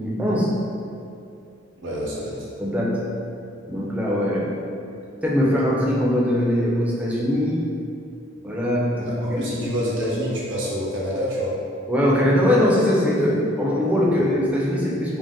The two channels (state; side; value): normal; both; correlation 0.64